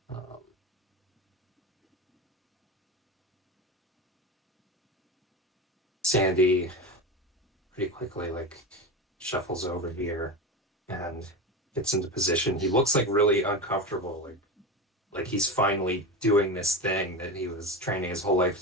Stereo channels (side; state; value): both; normal; correlation 0.23